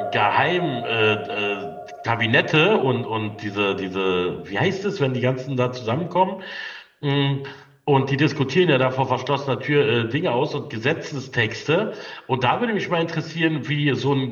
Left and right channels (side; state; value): both; identical; correlation 1.00